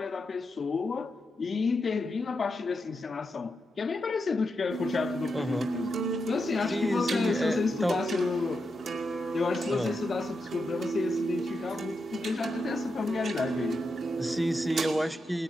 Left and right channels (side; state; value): both; normal; correlation 0.86